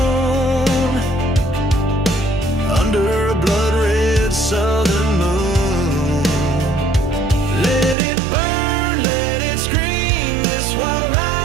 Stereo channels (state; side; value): drops out; left; at 8.0 s